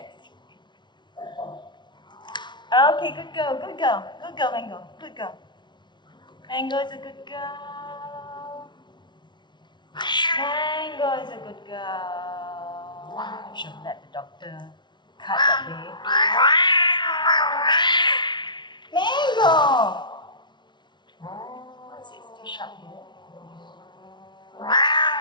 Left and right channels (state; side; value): late; right; 0.22 ms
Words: Okay, good girl, Mango. Good girl. Mango is a good girl. Mango is a good girl. I should let the doctor cut that day. Mango! What's it? Still sharp here.